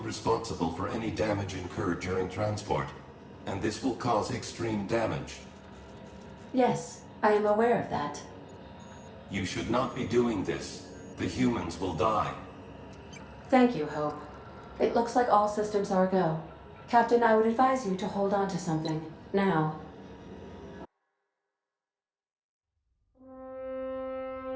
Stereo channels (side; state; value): both; identical; correlation 1.00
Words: responsible for any damage incurred during transport, and this will cause extreme damage. Yes, I am aware of that. You should not be doing this. The humans will die. Thank you, Hope. It looks like all systems are go. Captain, I would advise you to hold on to something. Now.